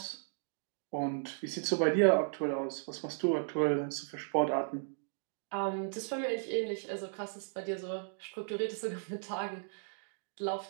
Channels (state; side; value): silent; left; digital silence